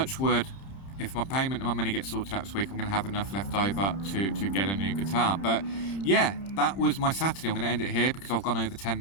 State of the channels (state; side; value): late; right; 30 ms